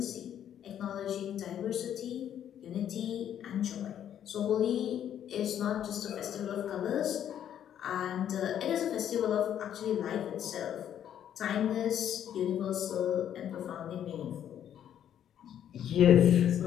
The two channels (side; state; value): right; quieter; 10.0 dB